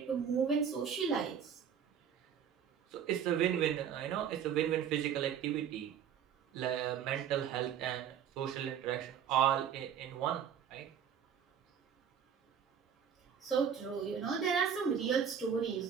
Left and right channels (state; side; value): quieter; left; 8.3 dB